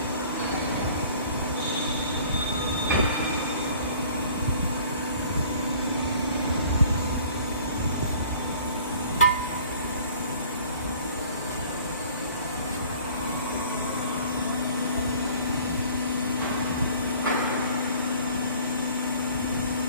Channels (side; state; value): both; inverted; correlation -0.51